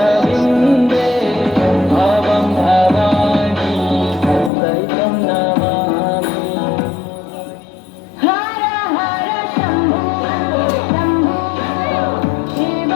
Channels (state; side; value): drops out; right; at 4.5 s